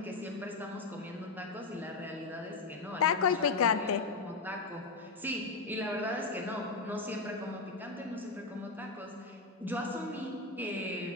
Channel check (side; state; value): right; quieter; 4.0 dB